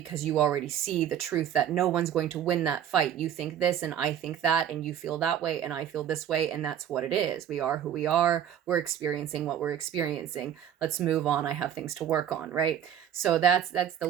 already see the truth that no one's going to win that fight. You think this and I think that, and you feel that way and I feel this way, and that's what it is. We are who we are. We're experiencing what we're experiencing. Let's move on. I have things to work on, right? So that's the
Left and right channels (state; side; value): quieter; left; 9.7 dB